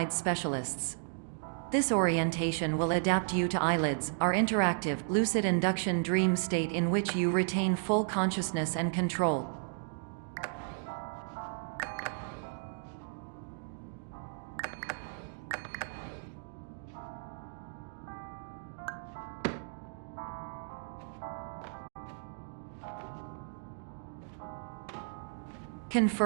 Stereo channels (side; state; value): left; silent; digital silence